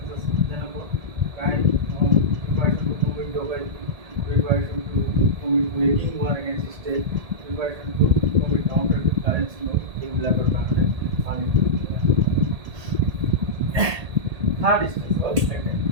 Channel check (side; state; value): left; late; 1.8 ms